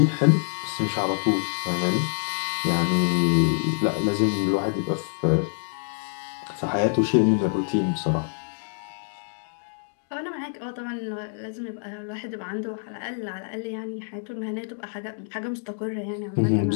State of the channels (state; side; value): silent; right; digital silence